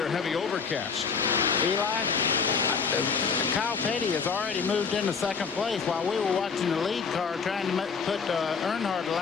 heavy overcast. Eli, Kyle Petty has already moved into second place. While we were watching the lead car trying to put Earnhardt a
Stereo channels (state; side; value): quieter; right; 5.6 dB